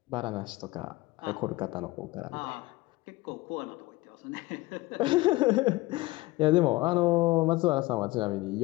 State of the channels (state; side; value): quieter; right; 20.2 dB